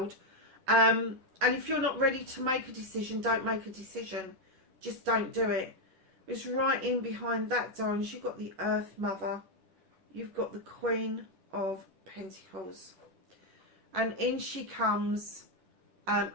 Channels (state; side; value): late; left; 11 ms